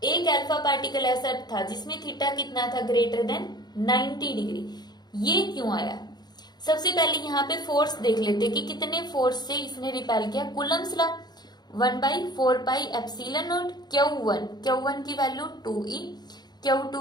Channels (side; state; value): right; late; 0.20 ms